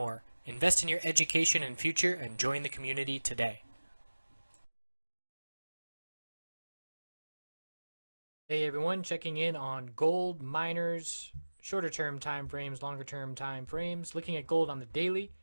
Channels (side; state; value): both; inverted; correlation -1.00